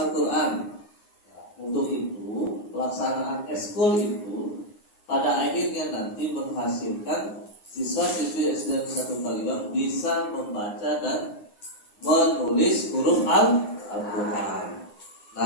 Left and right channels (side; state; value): right; late; 9.7 ms